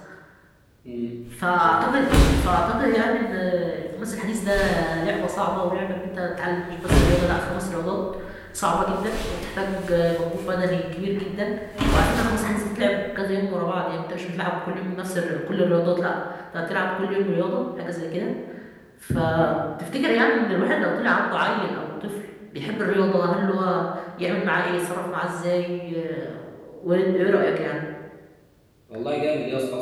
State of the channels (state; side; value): identical; both; correlation 1.00